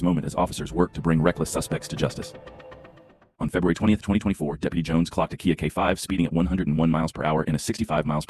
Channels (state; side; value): identical; both; correlation 1.00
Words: moment as officers work to bring reckless suspects to justice. On February 20th, 2024, Deputy Jones clocked a Kia K5 speeding at 101 miles per hour in a 65 miles